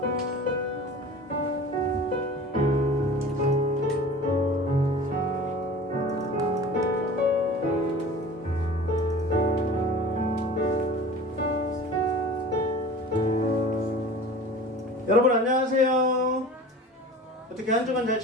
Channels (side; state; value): both; normal; correlation 0.40